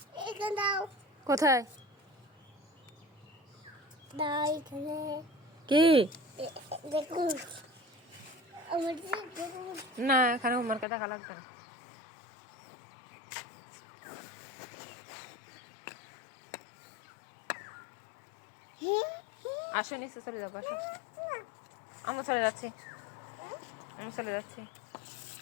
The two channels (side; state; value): right; drops out; at 10.9 s